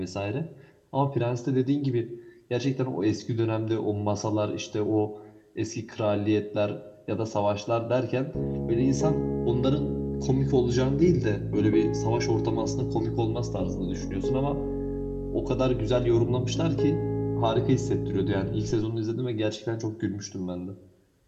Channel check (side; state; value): both; identical; correlation 1.00